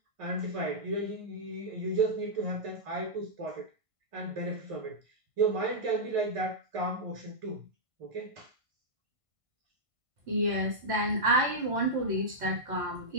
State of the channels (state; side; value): late; left; 1.5 ms